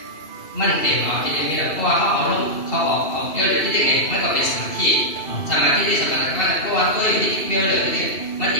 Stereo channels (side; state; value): right; late; 2.7 ms